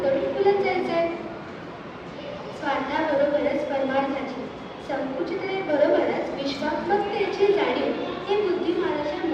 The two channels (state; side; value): identical; both; correlation 1.00